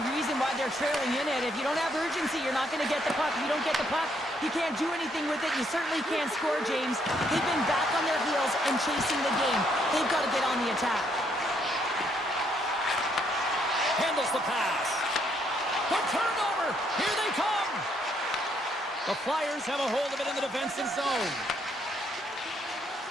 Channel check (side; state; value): both; normal; correlation 0.72